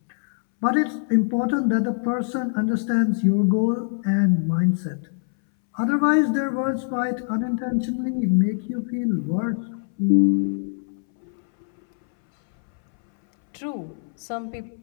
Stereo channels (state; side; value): silent; right; 62 dB below the other